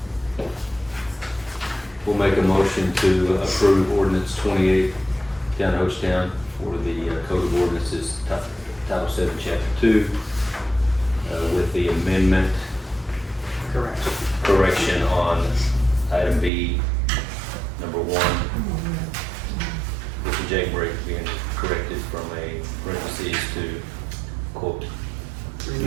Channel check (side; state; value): left; drops out; at 16.5 s